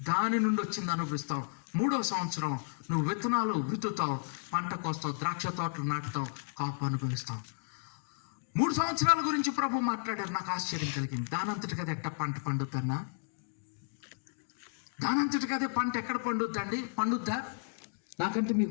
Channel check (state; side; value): silent; right; digital silence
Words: దాని నుండి వచ్చింది అనుభవిస్తావు. మూడవ సంవత్సరం నువ్వు విత్తనాలు విత్తుతావు, పంట కోస్తావు, ద్రాక్ష తోటలు నాటుతావు, కాపు అనుభవిస్తావు. 3 సంవత్సరాల గురించి ప్రభు మాట్లాడారు. నాకు ఆశ్చర్యం కలిగింది. దానంతటికి అదే ఎట్ట పంట పండుద్దన్నా? దానంతటికి అదే పంట ఎక్కడ పండుద్దండి? పండుద్దా? నాకంటే